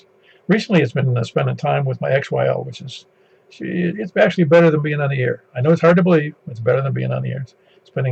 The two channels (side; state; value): both; identical; correlation 1.00